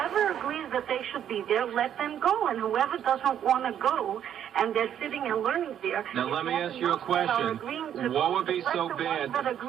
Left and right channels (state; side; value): quieter; left; 9.8 dB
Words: agrees that they should be there, let them go. And whoever doesn't want to go, and they're sitting and learning there. Now, let me ask you a question. What would be so bad? That